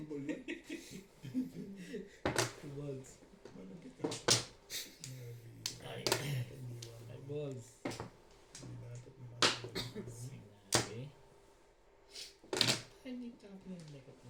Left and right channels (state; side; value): identical; both; correlation 1.00